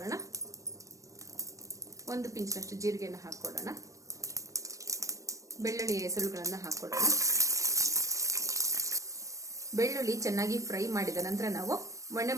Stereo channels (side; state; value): left; late; 0.16 ms